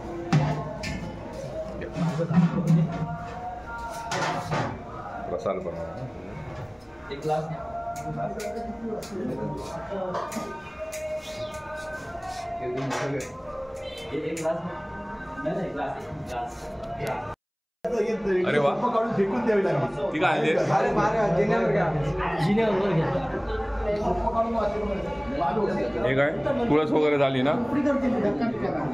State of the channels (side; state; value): both; identical; correlation 1.00